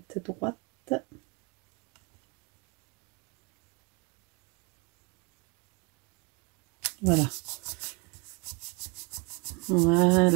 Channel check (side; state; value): left; quieter; 28.9 dB